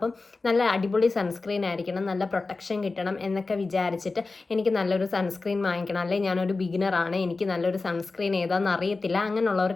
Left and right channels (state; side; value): quieter; right; 3.7 dB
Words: നല്ല അടിപൊളി സൺസ്ക്രീൻ ആയിരിക്കണം, നല്ല പ്രൊട്ടക്ഷൻ കിട്ടണം എന്നൊക്കെ വിചാരിച്ചിട്ട് എനിക്ക് നല്ലൊരു സൺസ്ക്രീൻ വാങ്ങിക്കണം, അല്ലെങ്കിൽ ഞാനൊരു ബിഗിനറാണ്, എനിക്ക് നല്ലൊരു സൺസ്ക്രീൻ ഏതാണെന്ന് അറിയത്തില്ല,